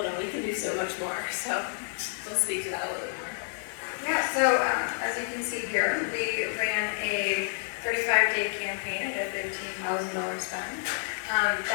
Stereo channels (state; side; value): silent; right; digital silence